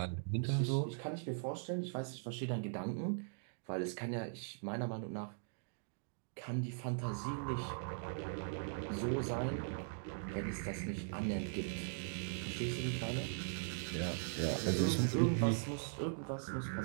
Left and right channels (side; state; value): left; silent; digital silence